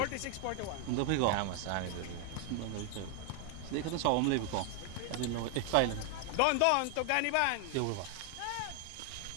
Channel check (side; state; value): both; different; correlation 0.00